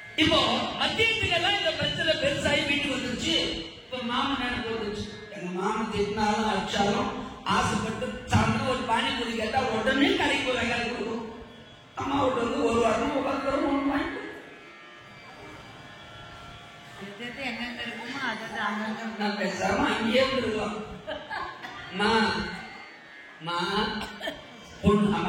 இப்போ மத்தியத்துக்கெல்லாம் இந்த பிரச்சனை பெருசாகி வீட்டுக்கு வந்துருச்சு. இப்ப மாமன் நினைப்பு வந்துருச்சு, எங்க மாமன் திட்டினாலும் அடிச்சாலும் ஆசைப்பட்டு சாப்பிட்டு ஒரு பானிபூரி கேட்டா உடனே கடைக்கு போய் வாங்கி கொடுக்கும். அம்மா விட்டு வந்து ஒரு வாரம் உட்காந்து ஒன்று வாங்கி நான் பேசாம அங்கேயே இருக்கலாம். பொண்ணு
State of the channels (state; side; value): identical; both; correlation 1.00